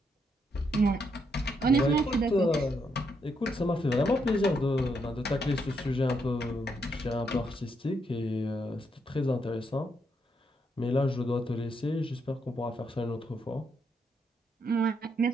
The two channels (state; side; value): normal; both; correlation 0.77